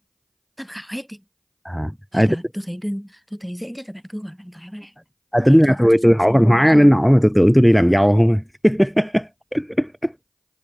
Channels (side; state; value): both; identical; correlation 1.00